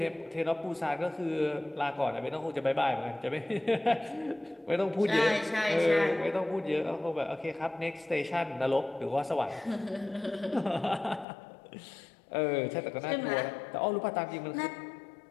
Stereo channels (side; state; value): right; drops out; at 11.2 s